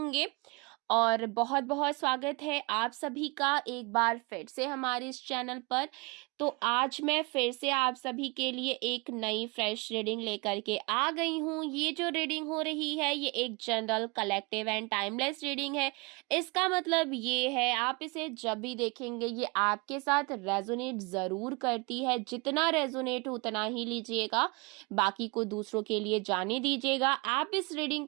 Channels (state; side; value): quieter; left; 28.4 dB